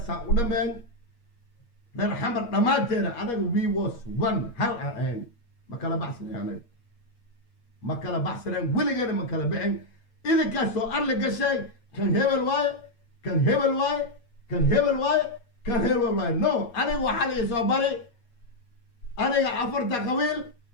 رن حمر دماتينا أنا we was one هل أين ما كلا بحثنا يعني ما كلا بحثنا ويليغينا ما كلا بعين إذا كان سؤال لك شيء كان هبل واي كان هبل واي كان هبل واي كان هبل واي نو أنا وحالي صبري أنا عفرت قويل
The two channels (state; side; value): late; right; 8.4 ms